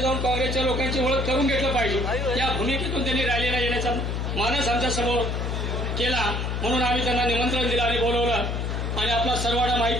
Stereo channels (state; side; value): noise; left; hum, 1 dB below the sound